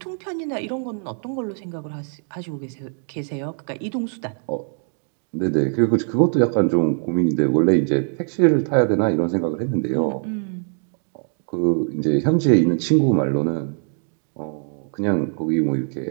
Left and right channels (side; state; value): left; silent; 57 dB below the other